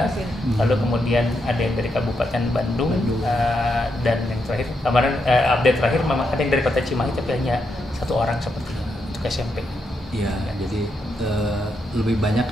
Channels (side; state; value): both; normal; correlation 0.82